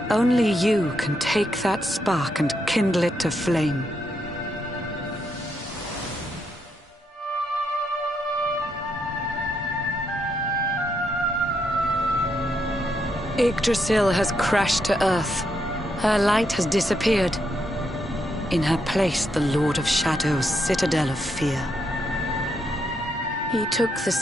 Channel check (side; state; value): both; normal; correlation 0.79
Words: Only you can take that spark and kindle it to flame. Yggdrasil has crashed to earth. Her light has disappeared. In her place, the Lord of Shadow's citadel of fear. He took the